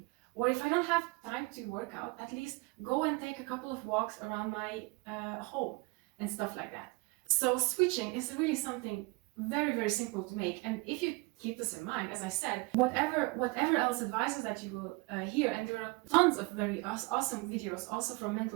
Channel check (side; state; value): left; quieter; 26.4 dB